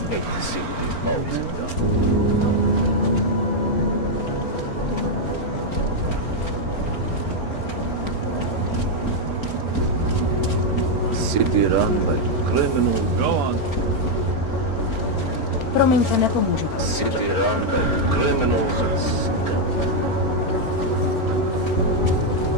Hate to see what these bugs have done. City run by criminals. Go on. Promiňte, nepomůžu. City run by criminals and scum.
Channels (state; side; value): late; right; 4.4 ms